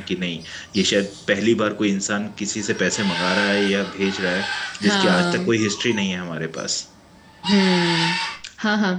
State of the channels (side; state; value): both; identical; correlation 1.00